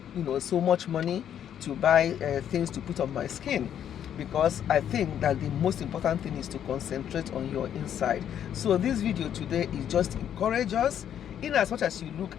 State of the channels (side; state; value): right; quieter; 9.7 dB